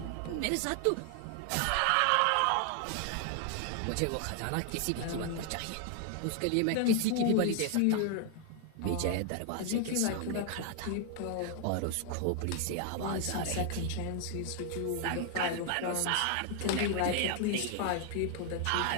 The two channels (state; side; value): different; both; correlation 0.00